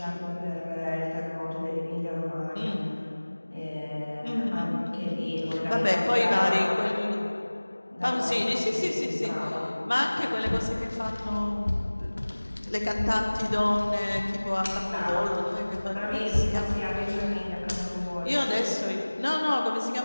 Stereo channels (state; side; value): inverted; both; correlation -1.00